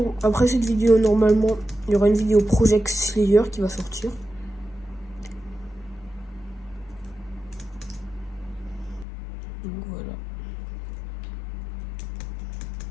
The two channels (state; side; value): drops out; right; at 9.1 s